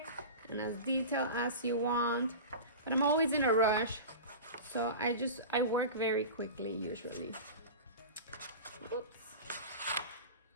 and as detailed as you want, but I'm always in a rush, so I work very quickly usually. Oops.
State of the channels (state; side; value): inverted; both; correlation -0.32